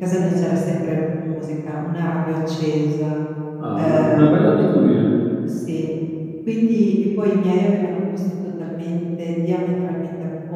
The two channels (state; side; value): identical; both; correlation 1.00